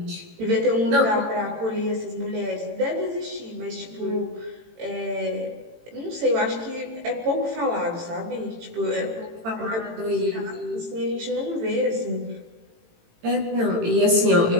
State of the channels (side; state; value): left; late; 18 ms